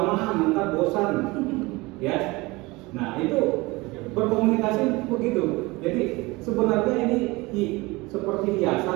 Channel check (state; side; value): quieter; left; 22.9 dB